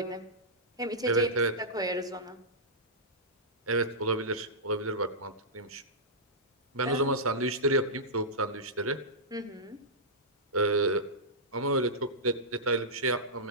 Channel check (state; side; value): normal; both; correlation -0.14